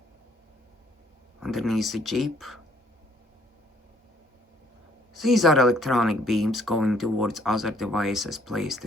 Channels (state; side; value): normal; both; correlation 0.63